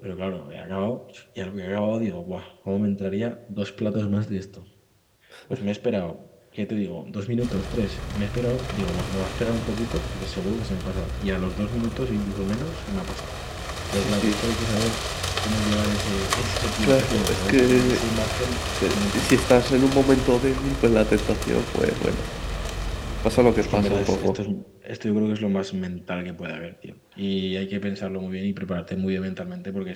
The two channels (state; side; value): identical; both; correlation 1.00